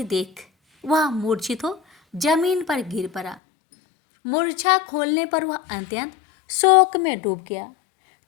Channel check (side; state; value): right; drops out; at 3.4 s